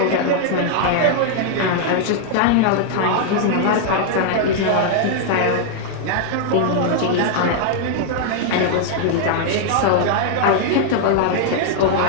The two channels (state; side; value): different; both; correlation 0.00